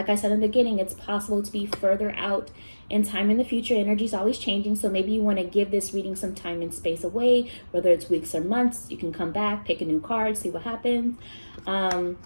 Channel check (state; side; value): inverted; both; correlation -1.00